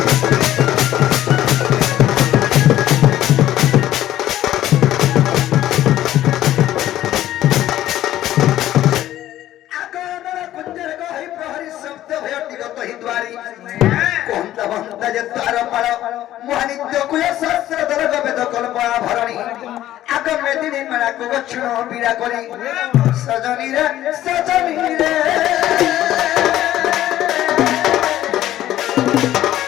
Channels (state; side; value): quieter; right; 13.4 dB